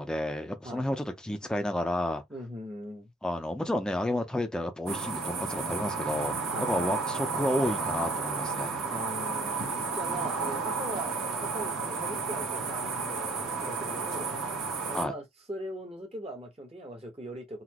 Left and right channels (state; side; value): normal; both; correlation 0.62